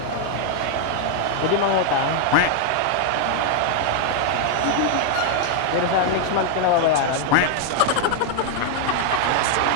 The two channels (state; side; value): different; both; correlation 0.00